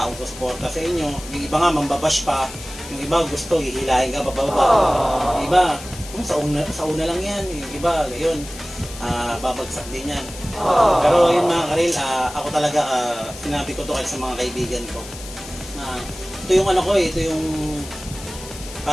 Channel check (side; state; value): left; noise; hiss, 14 dB below the sound